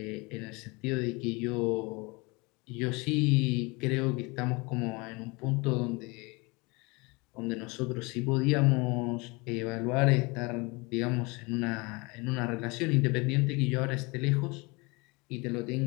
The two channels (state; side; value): quieter; right; 26.8 dB